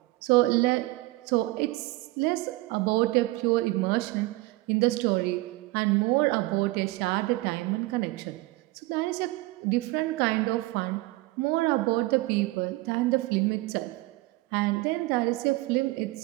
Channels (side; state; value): left; quieter; 20.5 dB